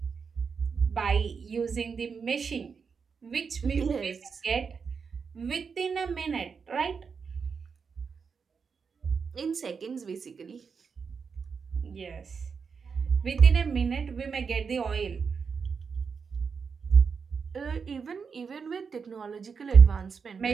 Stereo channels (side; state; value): left; quieter; 5.7 dB